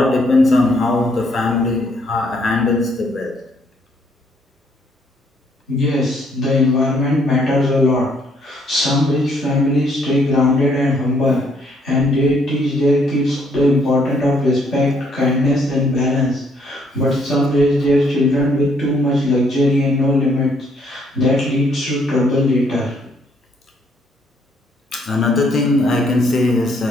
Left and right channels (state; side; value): normal; both; correlation 0.68